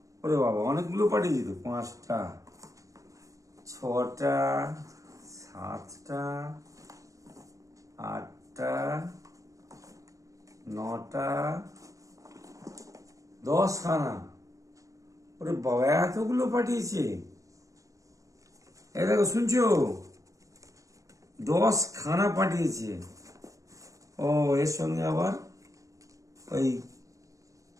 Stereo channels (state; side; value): late; left; 0.16 ms